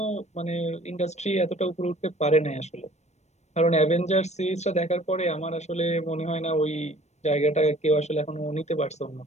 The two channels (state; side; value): late; right; 0.32 ms